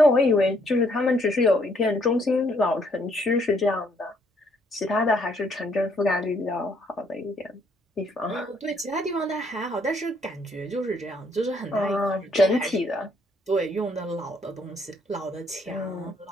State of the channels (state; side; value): normal; both; correlation 0.68